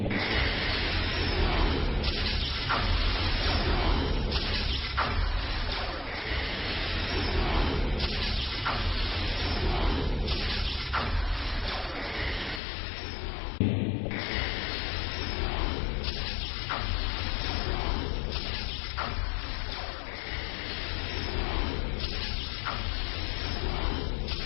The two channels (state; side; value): drops out; right; at 12.6 s